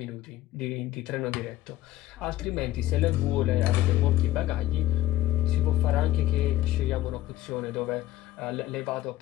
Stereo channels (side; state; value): right; quieter; 15.2 dB